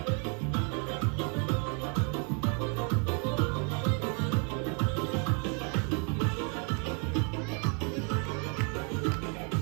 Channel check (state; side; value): quieter; left; 37.3 dB